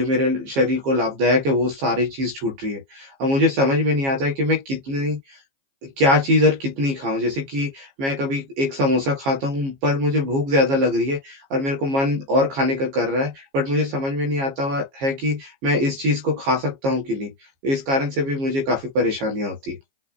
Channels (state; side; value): late; left; 15 ms